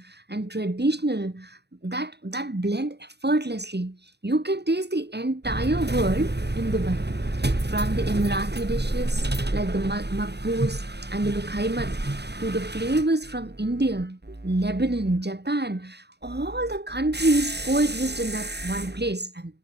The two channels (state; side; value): late; left; 0.49 ms